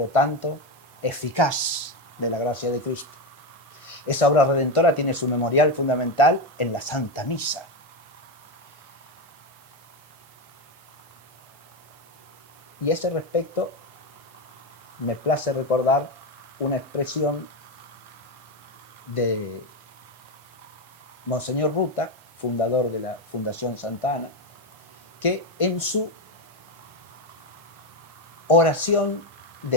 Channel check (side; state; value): both; normal; correlation 0.11